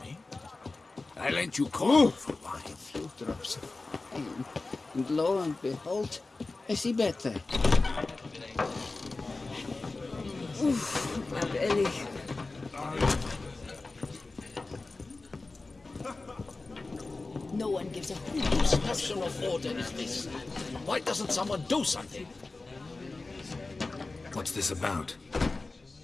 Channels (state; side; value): quieter; right; 3.4 dB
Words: me? I lent you corn for wine. A few drops of wine, and lo and behold, I see better. Oof, my belly. No one gives a hoot. Whose National order is this? Why doesn't someone do something? what's this about?